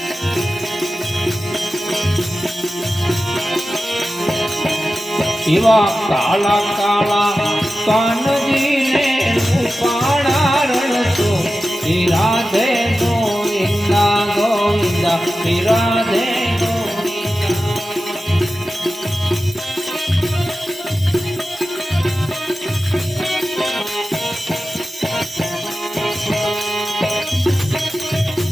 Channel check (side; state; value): both; normal; correlation 0.94